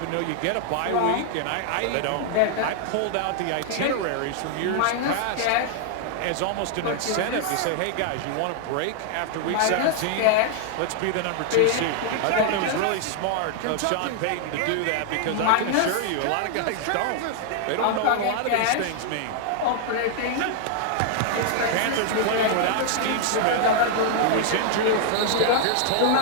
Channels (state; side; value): different; both; correlation 0.00